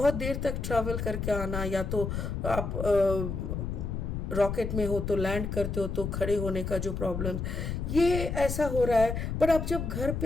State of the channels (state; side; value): noise; left; rumble, 3 dB below the sound